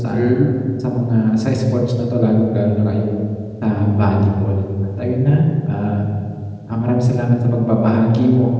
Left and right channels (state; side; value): identical; both; correlation 1.00